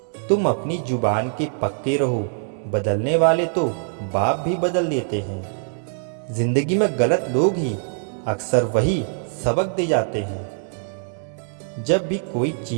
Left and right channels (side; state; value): left; silent; 63 dB below the other